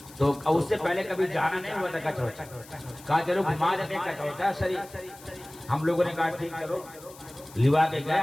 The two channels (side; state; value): left; noise; hiss, 20 dB below the sound